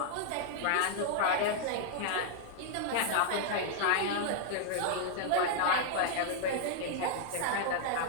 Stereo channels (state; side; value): different; both; correlation -0.01